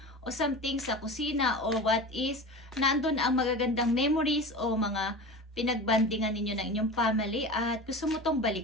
o something sa kusina, or what is, nandun ang magagandang memories o mga pinagbandingan ninyo ng inyong family at gusto mo tong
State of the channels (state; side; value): normal; both; correlation 0.31